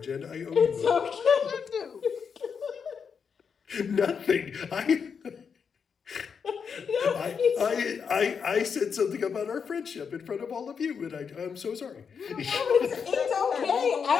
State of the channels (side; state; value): right; quieter; 6.4 dB